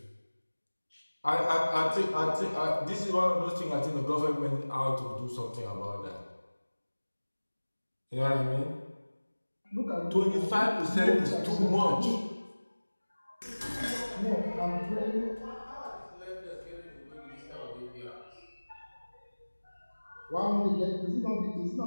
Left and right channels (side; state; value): both; inverted; correlation -1.00